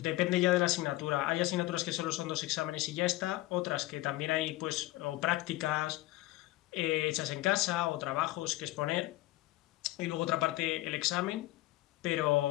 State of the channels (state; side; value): quieter; right; 18.1 dB